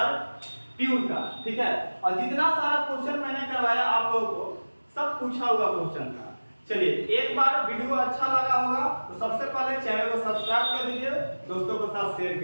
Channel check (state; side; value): inverted; both; correlation -1.00